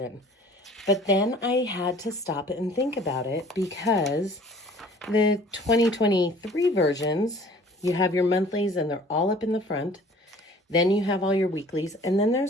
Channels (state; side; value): normal; both; correlation 0.50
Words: But then I had to stop and think about it because the 2023 versions, you have your monthlies and they're all up in the front. Then you have all your weeklies. And then